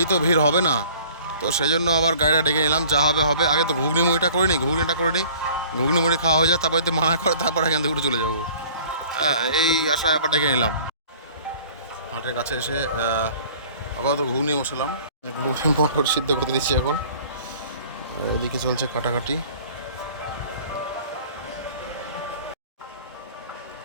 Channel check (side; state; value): both; inverted; correlation -0.50